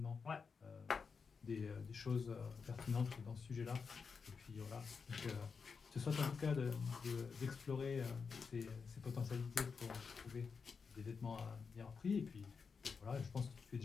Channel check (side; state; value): right; quieter; 5.4 dB